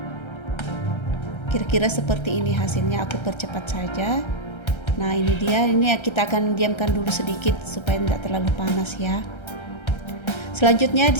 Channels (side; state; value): right; late; 1.3 ms